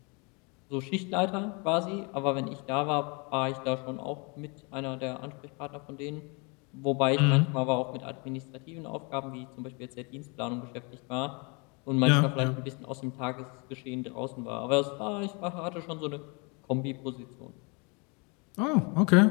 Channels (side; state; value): right; quieter; 31.6 dB